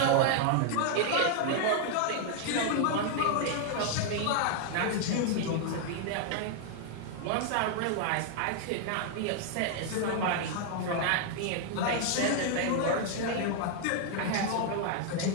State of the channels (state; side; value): different; both; correlation 0.00